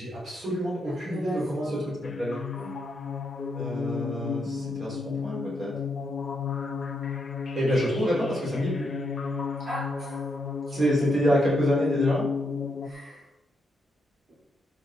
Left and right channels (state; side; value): normal; both; correlation 0.79